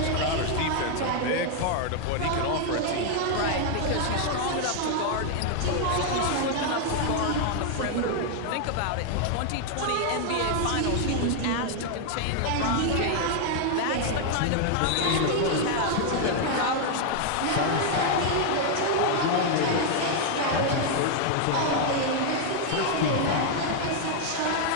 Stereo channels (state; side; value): different; both; correlation 0.00